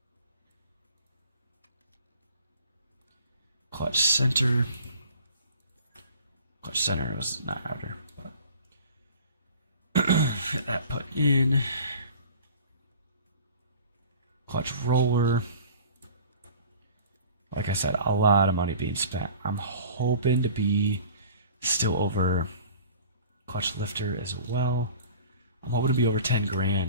Clutch center. Clutch center was not outer, but get that put in. Clutch roller. Like I said, a lot of money being spent. I'm hoping to be still over clutch lifter as well. I'm hoping to be over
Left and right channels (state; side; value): inverted; both; correlation -0.44